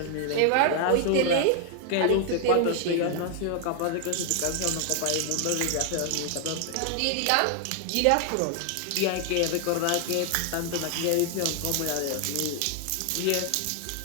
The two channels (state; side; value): different; both; correlation 0.00